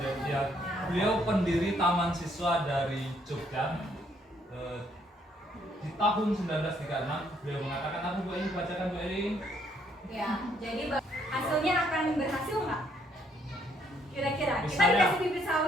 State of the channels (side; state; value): both; normal; correlation 0.69